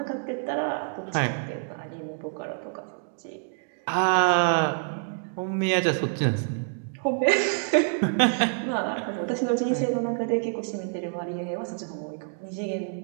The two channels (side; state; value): left; silent; 60 dB below the other